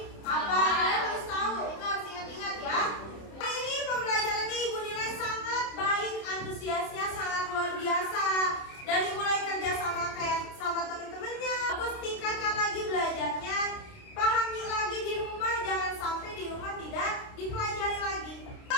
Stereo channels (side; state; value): right; late; 29 ms